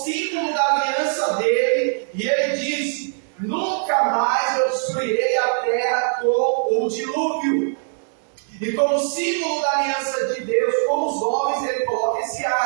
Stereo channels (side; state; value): left; silent; digital silence